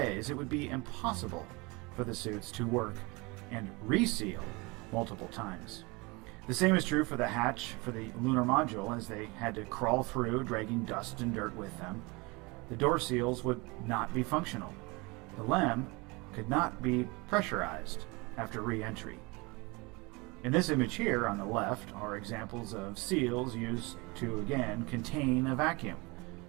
it would be impossible for the suits to work and reseal multiple times. The same is true for the hatch for the lunar module, as they had to crawl through, dragging dust and dirt with them. The door seals would not be functional. The LEM could not be pressurized after re-entry. In this image here on the left are examples of seals used to again contain a vacuum.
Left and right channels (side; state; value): left; quieter; 26.2 dB